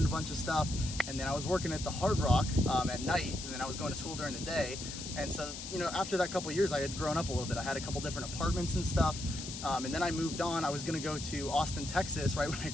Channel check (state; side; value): noise; left; hiss, 8 dB below the sound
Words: a bunch of stuff. And then I was working at the Hard Rock at night, and then I was going to school during the day. And so, you know, after that couple of years, I had grown up a little bit. I had a couple different apartments and stuff. And then I moved on. I was gonna go to Austin, Texas right when I